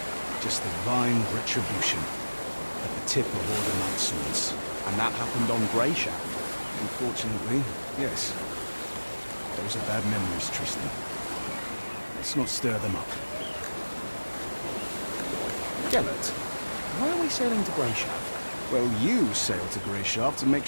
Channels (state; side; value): inverted; both; correlation -1.00